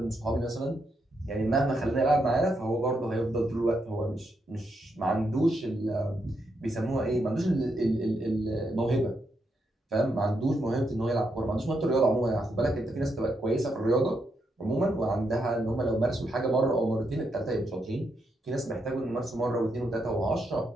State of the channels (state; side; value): normal; both; correlation 0.80